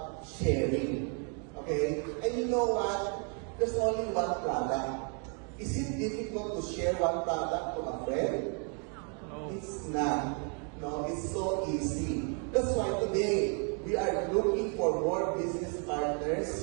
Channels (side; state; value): left; quieter; 39.6 dB